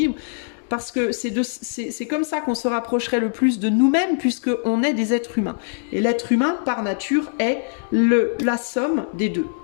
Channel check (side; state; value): right; silent; digital silence